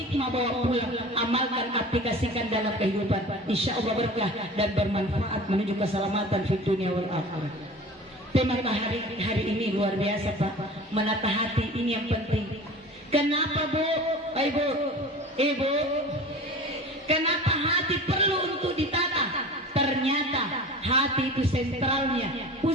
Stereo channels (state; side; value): normal; both; correlation 0.38